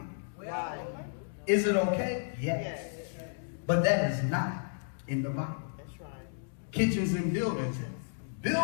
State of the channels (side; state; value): right; silent; digital silence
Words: Is it okay? Yes. But that is not in the Bible. That's right. Kitchens and buildings.